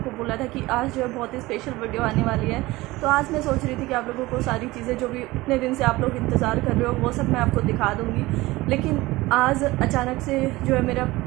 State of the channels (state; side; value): quieter; left; 19.8 dB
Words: बोला था कि आज जो है बहुत ही स्पेशल वीडियो आने वाली है। तो आज मैं सोच रही थी कि आप लोगों को सारी चीज़ें जो भी इतने दिन से आप लोग इंतज़ार कर रहे हो वो सब मैं आपको दिखा दूँगी। लेकिन आज अचानक से जो है मेरा